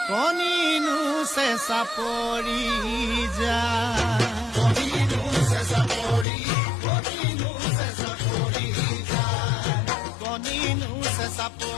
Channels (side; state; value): right; drops out; at 6.2 s